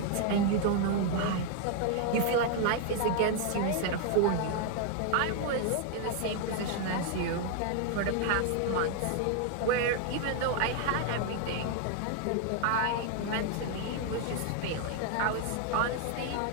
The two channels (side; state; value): both; different; correlation 0.00